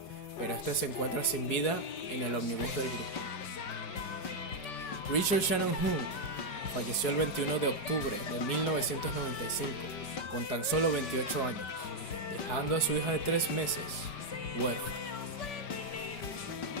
pero este se encuentra sin vida en el ómnibus del grupo. Richard Shannon Jung falleció el 21 de octubre de 1995, con tan solo 28 años, dejando a su hija de 3 meses, huérfana.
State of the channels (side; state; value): right; late; 4.7 ms